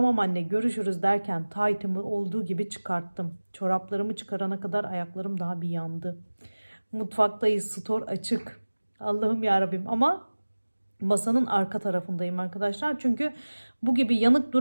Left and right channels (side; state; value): both; inverted; correlation -1.00